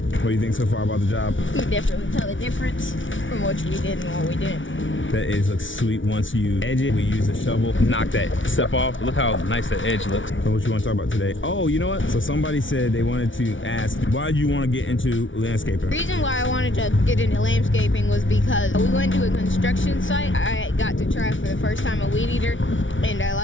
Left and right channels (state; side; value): late; right; 0.56 ms